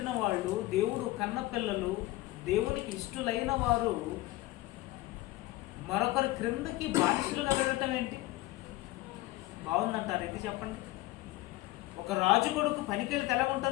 వాళ్ళు, దేవుడు కన్న పిల్లలు, దేవునికి ఇష్టలైన వారు మరొకరి క్రిందకి బానిసలుగా వెళ్ళటం ఏంటి? బాగుందంటారు? ఇది చెప్పండి. ఒక రాజు కొడుకు పనికెళ్ళి ఎలా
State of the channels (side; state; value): right; quieter; 18.3 dB